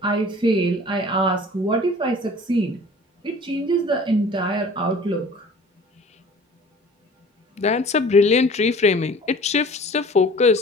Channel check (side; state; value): both; normal; correlation 0.46